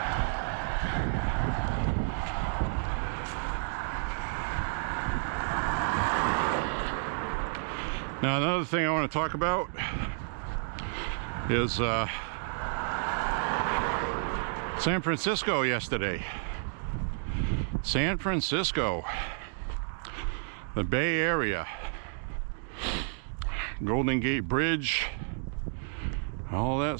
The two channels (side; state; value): left; silent; 57 dB below the other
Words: Now another thing I want to talk about is San Francisco yesterday. San Francisco, the Bay Area, Golden Gate Bridge, all